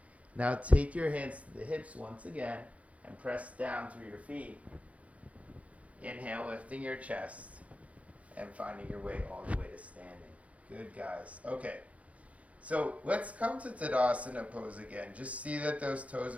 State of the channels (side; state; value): left; late; 0.066 ms